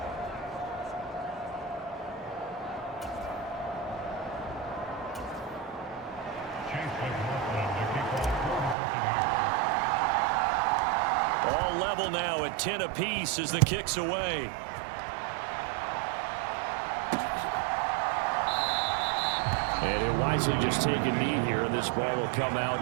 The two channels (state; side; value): drops out; left; at 8.8 s